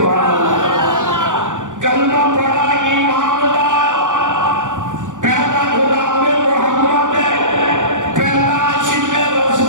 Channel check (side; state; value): left; late; 0.87 ms